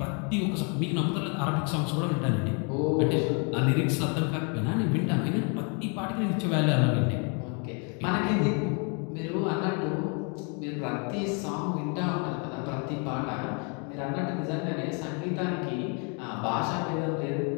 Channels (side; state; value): right; quieter; 36.7 dB